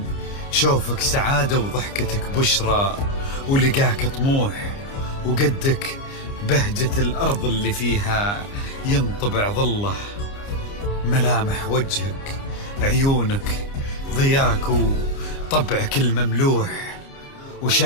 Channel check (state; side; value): late; right; 29 ms